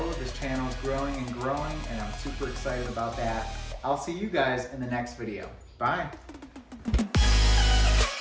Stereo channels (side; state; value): both; identical; correlation 1.00